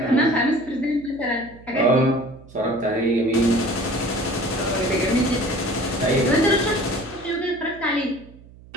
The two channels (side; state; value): right; noise; hum, 22 dB below the sound